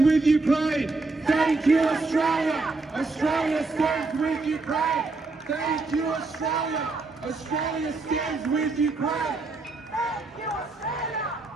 Ukraine. Thank you, Australia. Australia stands with Ukraine. Thank you, Australia. Australia stands with Ukraine. Thank you, Australia.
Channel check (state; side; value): quieter; left; 3.6 dB